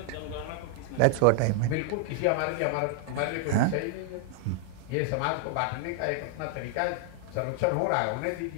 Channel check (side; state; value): both; different; correlation 0.00